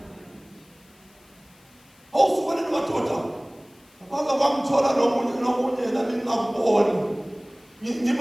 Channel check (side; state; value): left; noise; hiss, 30 dB below the sound